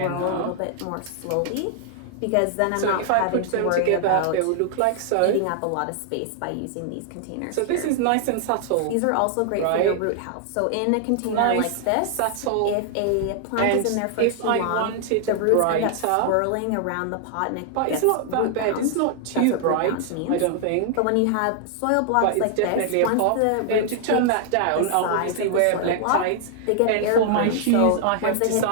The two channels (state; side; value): different; both; correlation 0.00